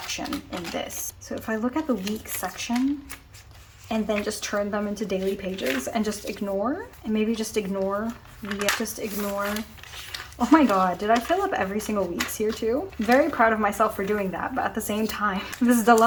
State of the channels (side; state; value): both; identical; correlation 1.00